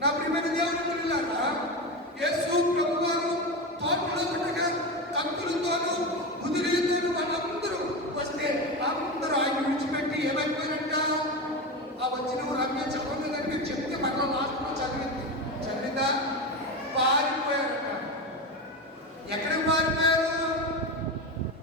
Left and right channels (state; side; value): normal; both; correlation 0.20